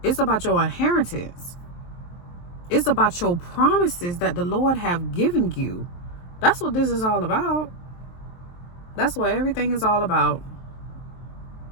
It's about your inheritance. It's about your promises that the Lord have given you. That's what this is all about. That's what everything is all about.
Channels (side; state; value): right; late; 23 ms